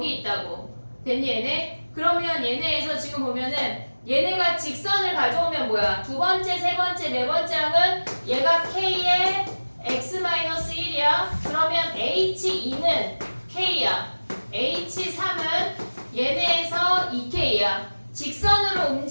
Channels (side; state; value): both; inverted; correlation -1.00